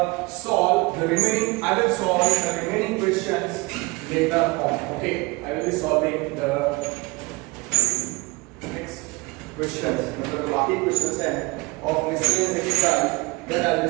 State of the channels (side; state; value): left; quieter; 25.1 dB